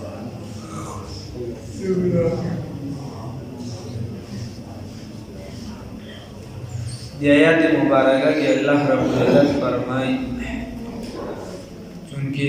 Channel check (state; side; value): identical; both; correlation 1.00